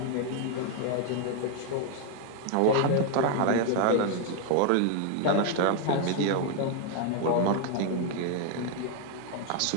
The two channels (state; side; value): different; both; correlation 0.01